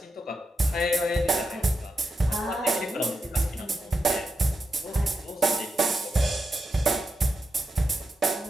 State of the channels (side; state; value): both; normal; correlation 0.87